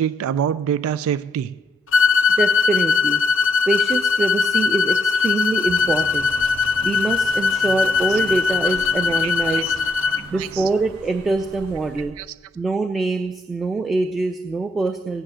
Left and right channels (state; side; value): normal; both; correlation 0.76